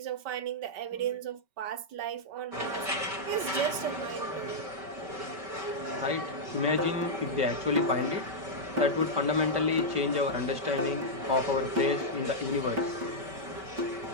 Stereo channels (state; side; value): late; left; 5.2 ms